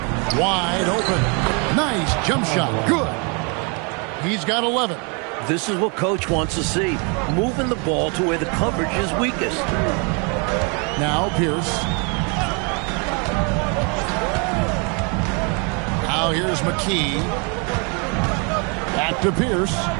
Wide open. Nice jump shot. Good. He's got 11. This is what Coach wants to see. Moving the ball to where the coverage is weakest. Now Pierce. Now here's McKee. Back to Pierce.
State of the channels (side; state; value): left; quieter; 33.8 dB